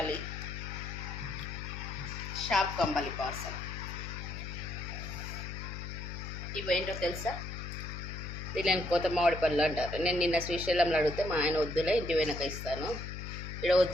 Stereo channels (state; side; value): noise; left; hum, 7 dB below the sound